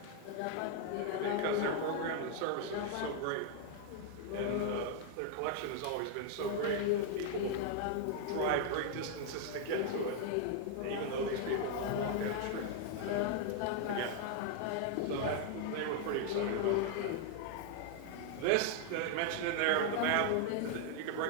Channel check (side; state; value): both; different; correlation 0.00